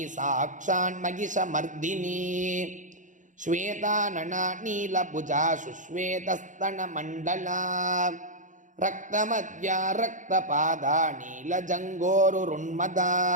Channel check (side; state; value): left; late; 0.37 ms